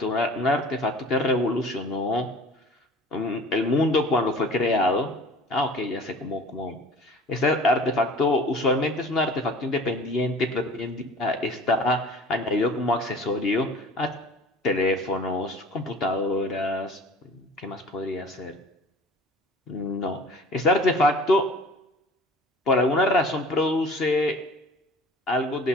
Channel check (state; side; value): normal; both; correlation 0.45